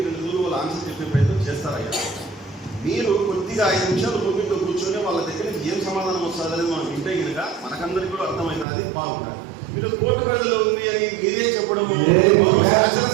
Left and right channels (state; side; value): drops out; left; at 8.7 s